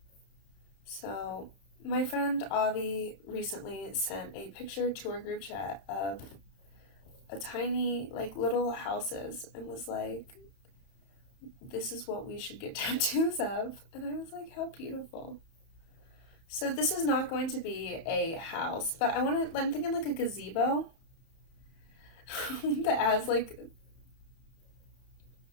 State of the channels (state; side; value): late; right; 31 ms